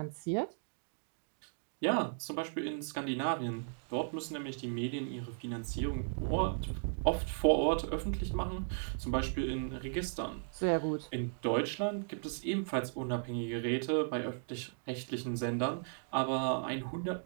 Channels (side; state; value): left; silent; digital silence